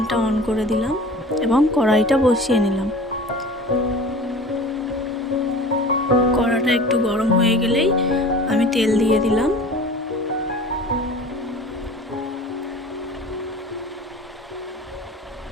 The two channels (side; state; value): both; normal; correlation 0.41